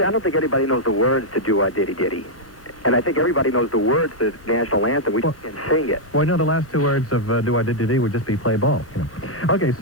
I don't think anybody knows the words to Do-Wah-Diddy-Diddy. And I think everybody knows the words to the national anthem. We just can't sing it. Well, no, the last two words of Do-Wah-Diddy-Diddy would just be play ball. You know. Okay,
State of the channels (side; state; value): right; late; 1.1 ms